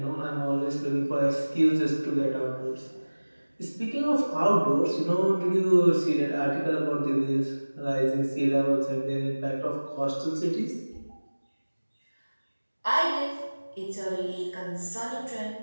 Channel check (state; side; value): inverted; both; correlation -1.00